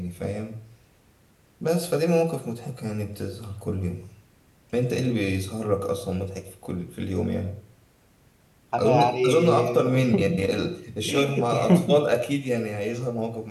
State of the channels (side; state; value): both; identical; correlation 1.00